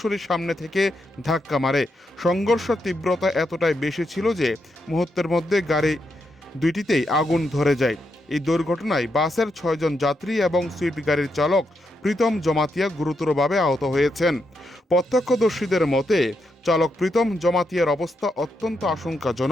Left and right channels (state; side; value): normal; both; correlation 0.82